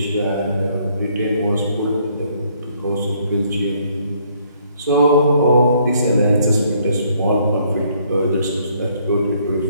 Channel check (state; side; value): inverted; both; correlation -0.66